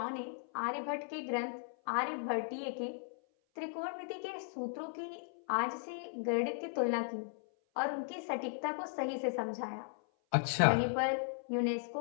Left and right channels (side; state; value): right; silent; 53 dB below the other